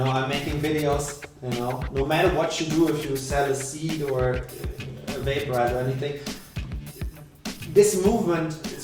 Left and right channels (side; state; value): both; identical; correlation 1.00